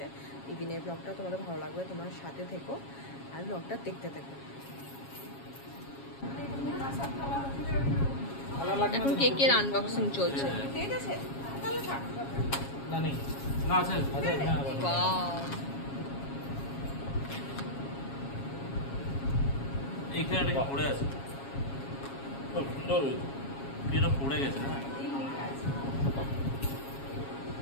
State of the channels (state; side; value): late; right; 7.3 ms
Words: ইভিনিংয়ের ব্লগটা তোমাদের ভালো লাগবে, তোমরা সাথে থেকো আর ব্লগটা দেখতে থেকো। এখন কেকের আনবক্সিং চলছে। এইখানে পড়ে আছে, খুব সুন্দর হয়েছে। এটা পড়ে গেছে না,